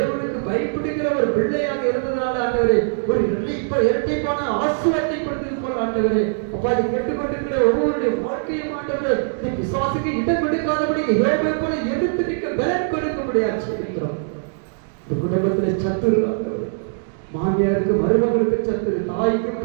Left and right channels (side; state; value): left; silent; digital silence